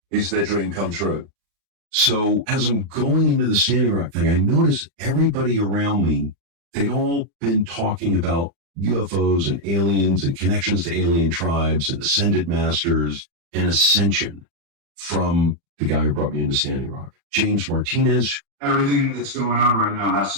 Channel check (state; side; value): late; left; 35 ms